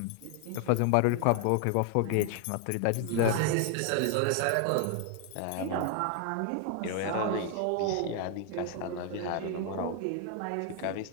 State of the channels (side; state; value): both; different; correlation 0.00